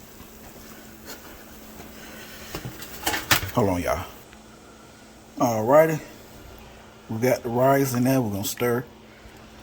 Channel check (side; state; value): both; identical; correlation 1.00